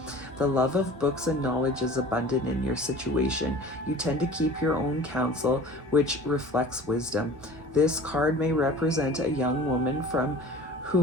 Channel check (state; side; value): normal; both; correlation 0.43